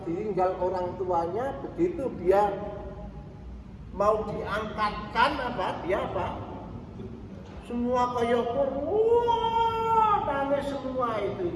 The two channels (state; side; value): identical; both; correlation 1.00